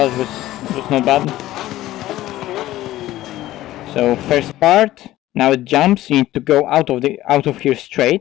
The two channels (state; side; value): quieter; right; 15.3 dB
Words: it was not bad. So first part, now it jumps, you need to go out of here